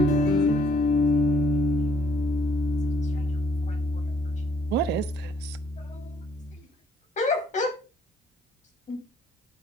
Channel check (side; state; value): both; normal; correlation 0.64